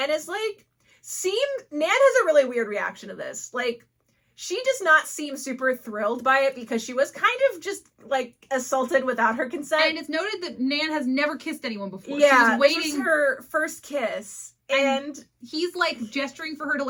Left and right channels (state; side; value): identical; both; correlation 1.00